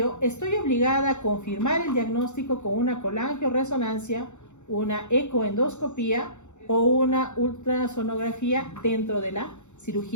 estoy obligada a confirmar el diagnóstico con una colangioresonancia, una ecoendoscopía o una ultrasonografía dentro de la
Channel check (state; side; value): late; right; 0.83 ms